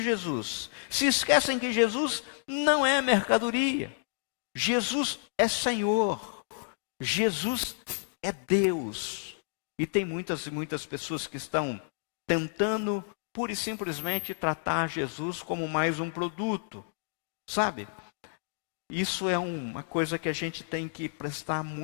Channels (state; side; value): silent; right; digital silence